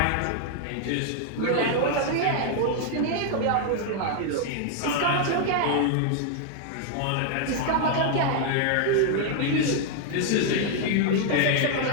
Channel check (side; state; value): both; different; correlation 0.00